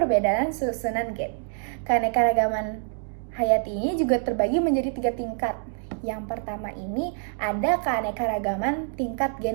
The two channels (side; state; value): left; silent; digital silence